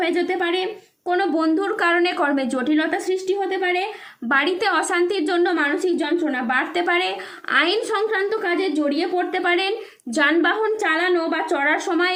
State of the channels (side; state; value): both; identical; correlation 1.00